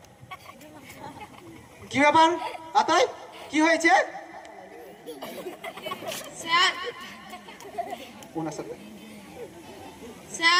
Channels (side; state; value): both; identical; correlation 1.00